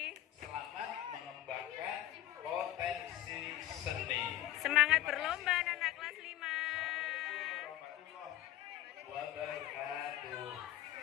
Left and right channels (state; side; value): quieter; right; 13.8 dB